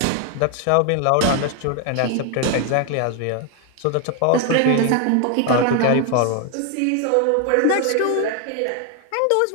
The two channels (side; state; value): both; different; correlation 0.01